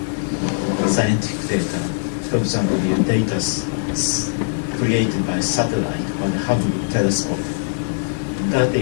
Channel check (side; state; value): right; silent; 60 dB below the other